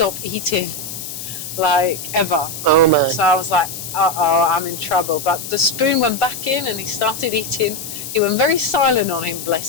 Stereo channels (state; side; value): noise; left; hiss, 9 dB below the sound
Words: eating, like, ever. Oh, man. So I was like, uh-oh, I'm in trouble. But the spoon went back in, and he started eating. He went very silent on him,